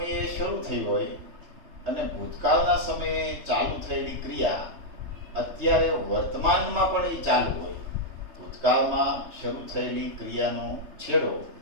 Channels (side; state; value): left; late; 3.3 ms